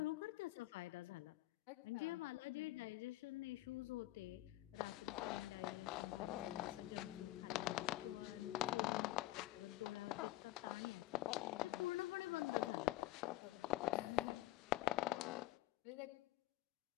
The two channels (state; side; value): quieter; right; 17.7 dB